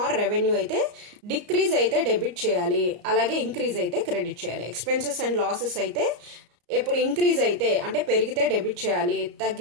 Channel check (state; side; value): late; left; 34 ms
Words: రెవెన్యూ అయితే డిక్రీజ్ అయితే డెబిట్ చేయాలి, అలాగే ఇంక్రీజ్ అయితే క్రెడిట్ చేయాలి. ఎక్స్పెన్సెస్ అండ్ లాసెస్ అయితే ఎప్పుడు ఇంక్రీజ్ అయితే అంటే పెరిగితే డెబిట్ చేయాలి,